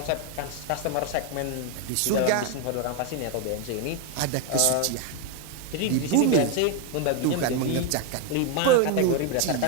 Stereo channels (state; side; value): different; both; correlation 0.01